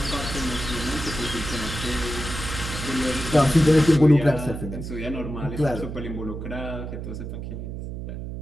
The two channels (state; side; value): noise; right; hum, 7 dB below the sound